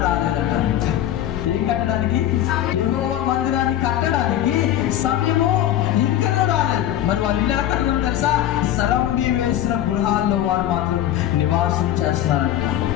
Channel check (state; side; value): quieter; right; 12.1 dB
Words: రాలేదట. ఏం కట్టడానికి? యెహోవా మందిరాన్ని కట్టడానికి సమయము ఇంకా రాలేదు. మరి వాళ్ళు ఇల్లు ఎలా కట్టడం తెలుసా? సరంబి వేసిన గృహాల్లో వారు మాత్రం నివాసం చేస్తున్నారంట.